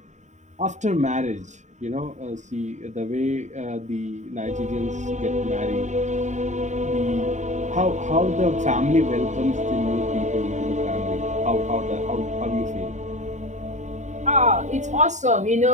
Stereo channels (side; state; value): left; late; 0.34 ms